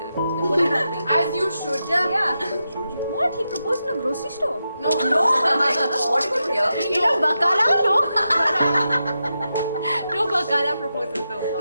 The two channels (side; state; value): both; inverted; correlation -0.88